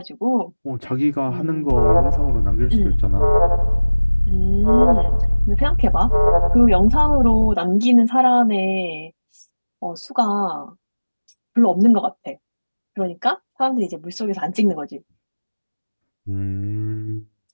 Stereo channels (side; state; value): both; inverted; correlation -1.00